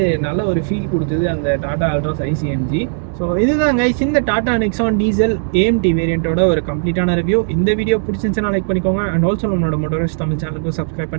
நல்ல ஒரு ஃபீல் கொடுத்தது அந்த டாடா அல்ட்ராஸ் ICMG. ஸோ இதுதான் கைஸ் இந்த டாடா நெக்ஸான் டீசல் AMT வேரியண்ட்டோட ஒரு கம்ப்ளீட்டான ரிவ்யூ. இந்த வீடியோ பிடிச்சிருந்துச்சுன்னா லைக் பண்ணிக்கோங்க. அண்ட் ஆல்சோ நம்மளோட மோட்டோரிஸ்ட் தமிழ் சேனலுக்கு சப்ஸ்கிரைப்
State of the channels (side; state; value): left; silent; digital silence